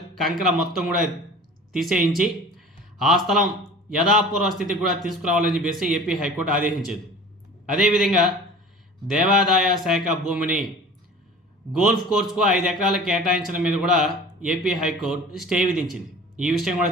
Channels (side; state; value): both; normal; correlation 0.41